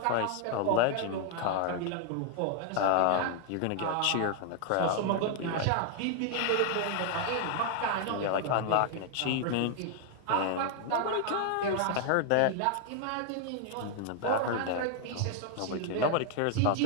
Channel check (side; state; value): both; different; correlation 0.00